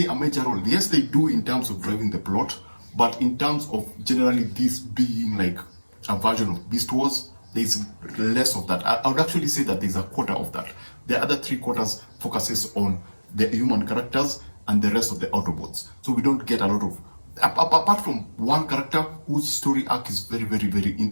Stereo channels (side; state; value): both; inverted; correlation -1.00